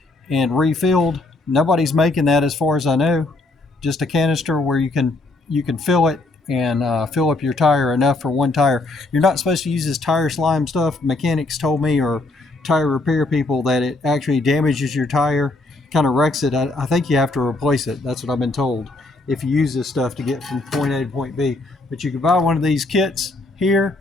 and refilled. Nobody's making that as far as I know. Just a canister where you can fill it and fill up your tire enough for one tire. You're not supposed to use this tire slime stuff. Mechanics told me, or tire repair people, that it actually damages your tire, kind of wrecks it. I think you have to replace it. That's what I've been told if you use this stuff to get from point A to point B. But you can buy one of these kits here.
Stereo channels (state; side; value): quieter; right; 3.0 dB